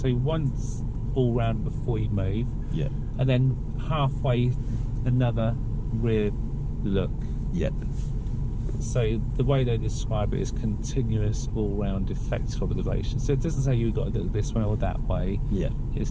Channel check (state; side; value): identical; both; correlation 1.00